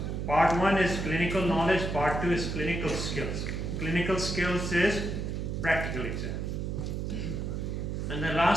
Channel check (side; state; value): right; noise; hum, 3 dB below the sound